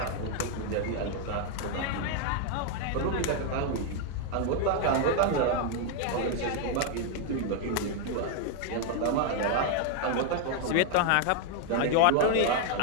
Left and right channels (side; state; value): both; different; correlation 0.00